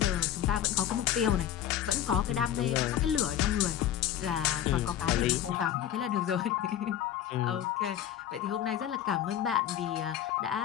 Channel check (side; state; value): right; quieter; 10.8 dB